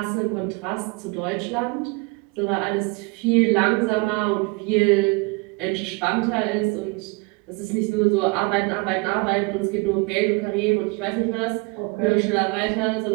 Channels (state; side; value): quieter; left; 27.7 dB